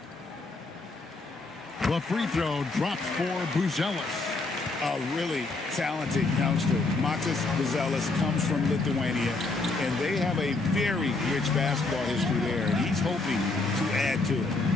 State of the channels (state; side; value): quieter; right; 3.4 dB